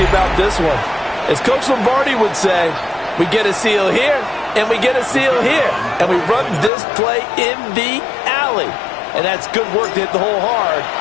about this one. As Coach Lombardi would say, we get a seal here, and we get a seal here, and we run this play in the alley. And that's good work to hit the hole hard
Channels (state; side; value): drops out; right; at 6.7 s